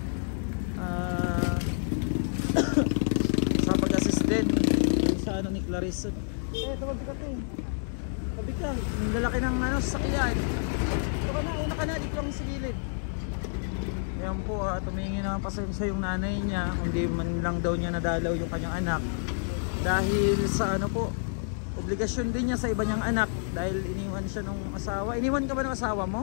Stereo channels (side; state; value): right; silent; digital silence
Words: Sa pag-assist din sa ni Clarice. Tabi ka to. Tabi ka. Yung lalaki ng sasakyan. Ito ka na. Una ka na. Dito lang sa gilid. Ayan po, tumingin na pasensya yung nanay niya, hindi man lang daw niya nadalaw yung kanyang anak. Dahil sa obligasyon din niya sa iba niyang anak. Dahil iniwan siya nung asawa. Iniwan ka ba ng asawa